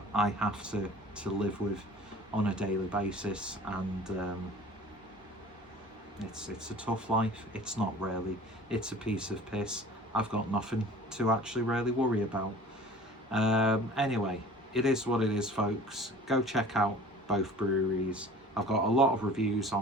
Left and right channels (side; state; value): both; normal; correlation 0.45